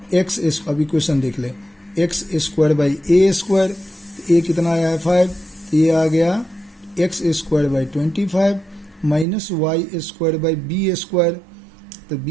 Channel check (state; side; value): drops out; left; at 9.2 s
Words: अब इक्वेशन देख ले, x² बाई a², a कितना आया है 5, तो ये आ गया x² by 25 minus y² by b², तो